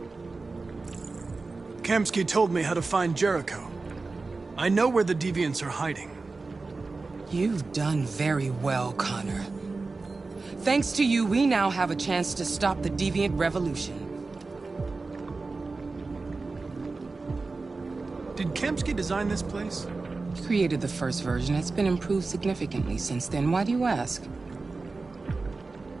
Kamsky told me how to find Jericho. I know where the deviants are hiding. You've done very well, Connor. Thanks to you, we now have a chance to stop the deviant revolution. Did Kamsky design this place? He created the first version. It's been improved significantly since then. Why do you ask?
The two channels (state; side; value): quieter; left; 3.8 dB